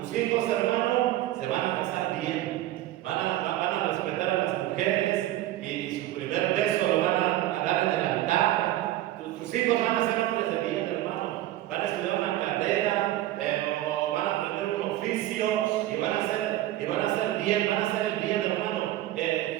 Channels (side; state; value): left; quieter; 14.7 dB